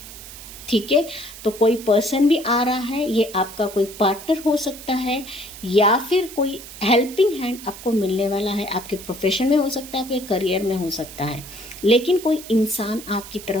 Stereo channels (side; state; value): right; noise; hiss, 14 dB below the sound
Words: ठीक है, तो कोई पर्सन भी आ रहा है, ये आपका कोई पार्टनर हो सकता है, या फिर कोई हेल्पिंग हैंड आपको मिलने वाला है। आपके प्रोफेशन में हो सकता है, आपके करियर में हो सकता है, लेकिन कोई इंसान आपकी